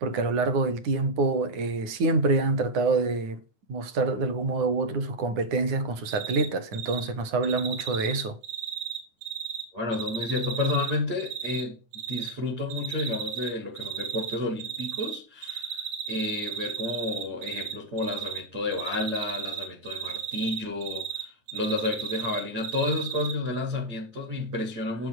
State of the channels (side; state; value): left; late; 9.6 ms